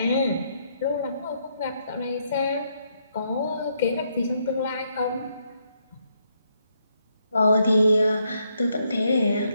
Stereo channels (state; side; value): inverted; both; correlation -0.75